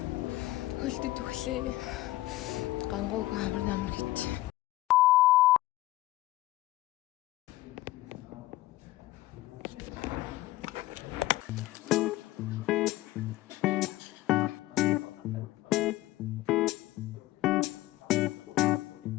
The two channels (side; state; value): right; quieter; 17.2 dB